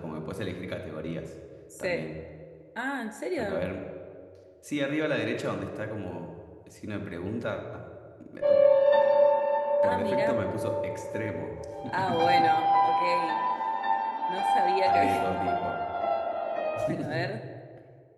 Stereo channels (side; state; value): both; identical; correlation 1.00